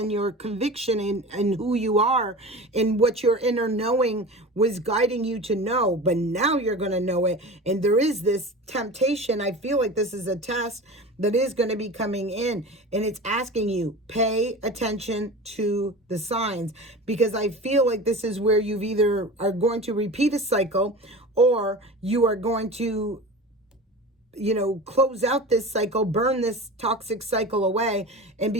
your conviction and who you are and what your inner knowing was guiding you to know. But now you're going to know it. And there is this temptation. I feel like this is a test that is going to be coming in, and it's asking you, pay attention to the signs, because I feel like this is where you've either are going to repeat a cycle, or you are going to, you know, close out this cycle, burn this toxic cycle away, and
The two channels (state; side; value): normal; both; correlation 0.33